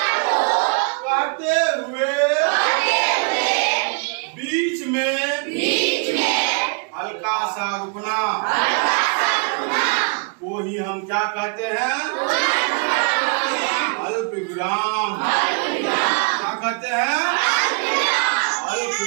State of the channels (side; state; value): left; quieter; 38.2 dB